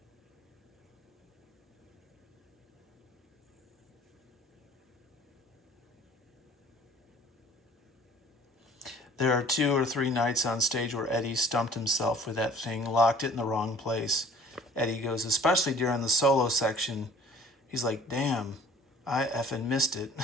There are 2 or 3 nights on stage where Eddie stumped himself with that thing, locked it in the wrong place. Eddie goes, especially during the solo section. He's like, damn, I effing missed it.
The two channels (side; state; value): both; normal; correlation 0.51